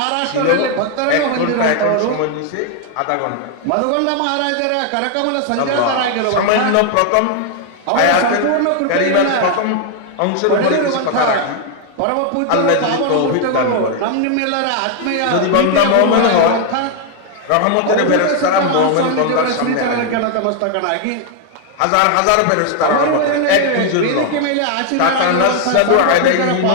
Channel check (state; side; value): different; both; correlation 0.00